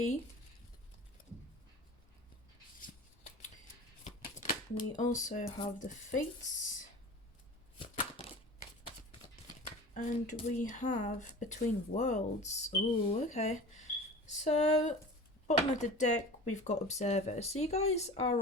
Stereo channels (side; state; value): both; normal; correlation 0.38